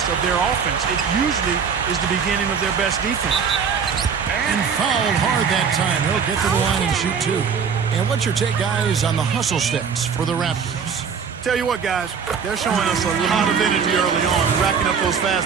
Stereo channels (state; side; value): quieter; left; 6.4 dB